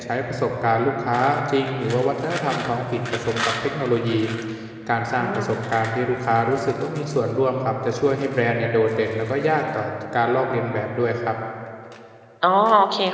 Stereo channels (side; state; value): both; identical; correlation 1.00